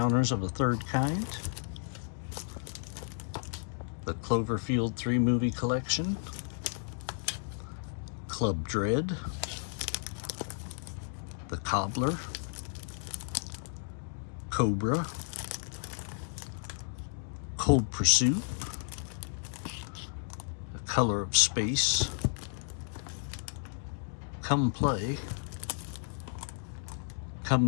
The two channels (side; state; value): right; silent; digital silence